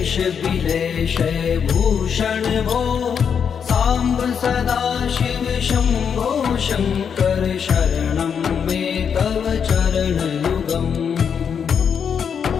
बिलेश भूषण भो साम्ब सदाशिव शम्भो शङ्कर शरणं मे तव चरणयुगम्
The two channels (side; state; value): right; quieter; 7.2 dB